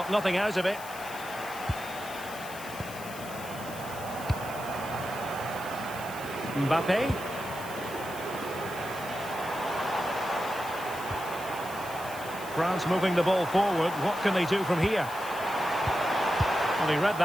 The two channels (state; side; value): noise; left; hiss, 15 dB below the sound